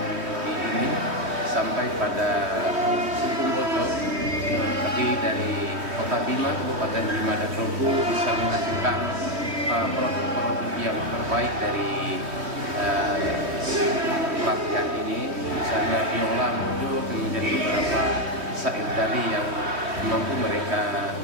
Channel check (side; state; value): left; late; 3.2 ms